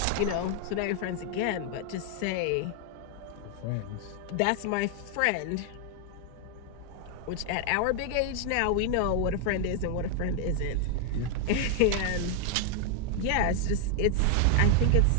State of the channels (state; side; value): different; both; correlation 0.00